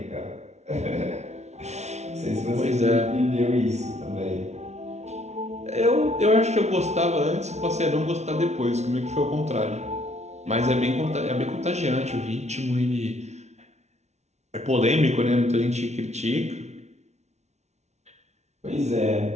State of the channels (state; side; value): late; left; 0.32 ms